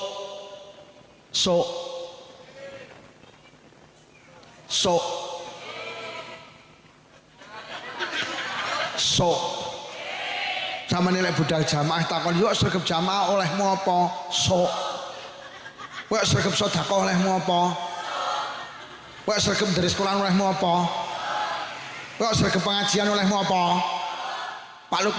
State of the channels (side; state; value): both; identical; correlation 1.00